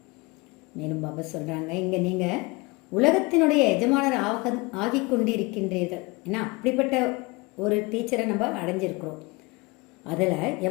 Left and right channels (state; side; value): quieter; right; 25.2 dB